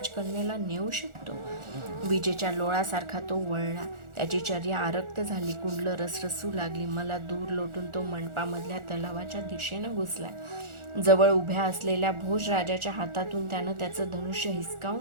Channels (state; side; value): late; left; 1.4 ms